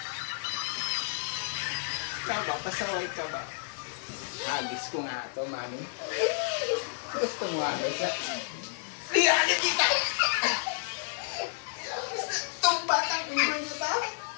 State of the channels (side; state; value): right; silent; 57 dB below the other